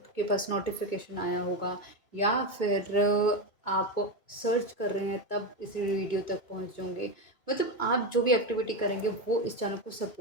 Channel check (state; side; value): late; right; 2.2 ms